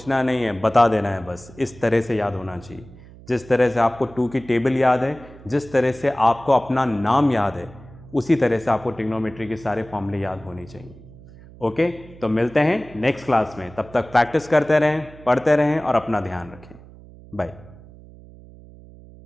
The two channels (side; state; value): right; noise; hum, 20 dB below the sound